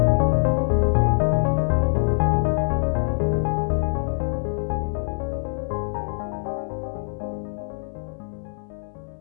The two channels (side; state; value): right; silent; digital silence